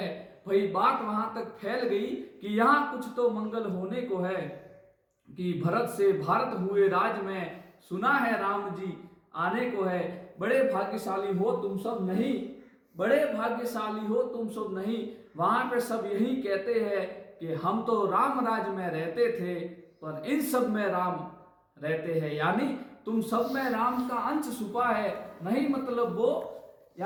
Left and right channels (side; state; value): both; identical; correlation 1.00